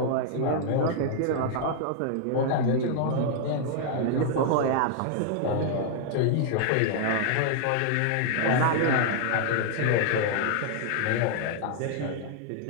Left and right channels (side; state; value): both; different; correlation -0.01